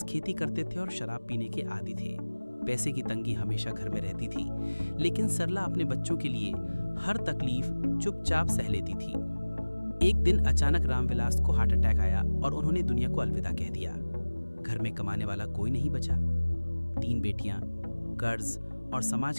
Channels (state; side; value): inverted; both; correlation -1.00